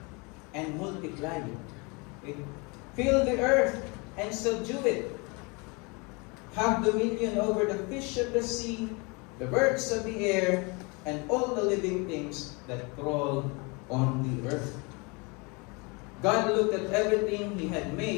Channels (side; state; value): right; quieter; 29.3 dB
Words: and multiply. Okay? Fill the earth and subdue it. Have dominion over the fish of the sea, the birds of the air, and all the living things that crawl on the earth. God looked at everything He had